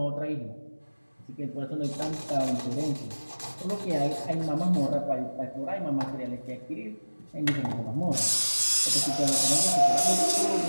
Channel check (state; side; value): inverted; both; correlation -1.00